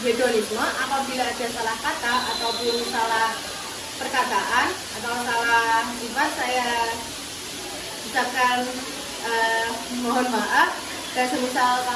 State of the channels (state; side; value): identical; both; correlation 1.00